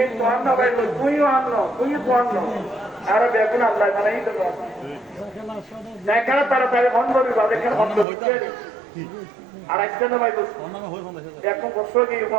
তো আন্ন গাইল তুইও আন্ন তুইও তো আন্ন আরো দেখুন আল্লাহ মানাই তো দেখা তাড়াতাড়ি বন্ধ করবি বা দেখেন বন্ধ হচ্ছে আর একটা না ভাই এখন বছর গিয়ে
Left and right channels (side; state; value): left; drops out; at 8.1 s